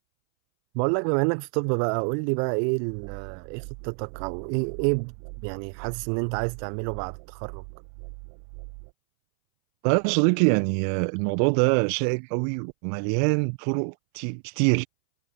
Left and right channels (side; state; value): left; silent; 61 dB below the other